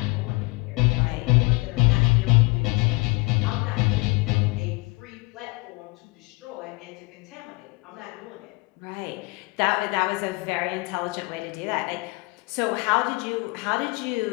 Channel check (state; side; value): quieter; right; 26.2 dB